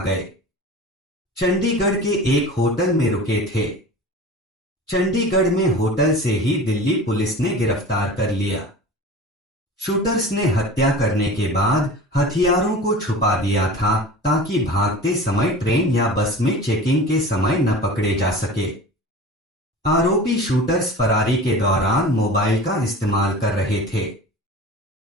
चंडीगढ़ के एक होटल में रुके थे। चंडीगढ़ में होटल से ही दिल्ली पुलिस ने गिरफ्तार कर लिया। शूटर्स ने हत्या करने के बाद हथियारों को छुपा दिया था ताकि भागते समय ट्रेन या बस में चेकिंग के समय न पकड़े जा सके। आरोपी शूटर्स फरारी के दौरान मोबाइल का इस्तेमाल कर रहे थे।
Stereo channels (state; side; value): normal; both; correlation 0.36